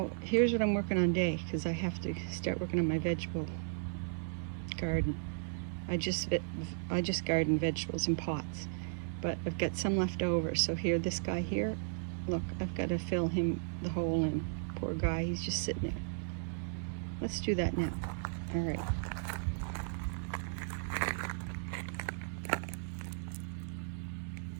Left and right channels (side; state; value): left; silent; digital silence